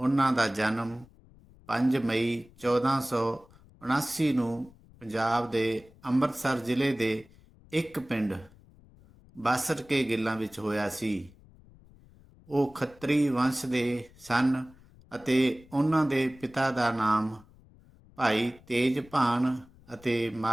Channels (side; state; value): left; noise; rumble, 25 dB below the sound